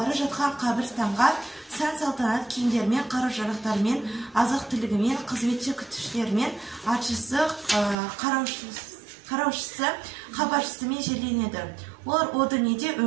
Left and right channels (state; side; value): drops out; left; at 8.0 s